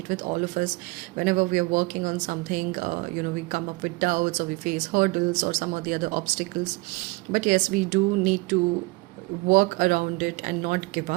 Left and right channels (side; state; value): left; quieter; 24.1 dB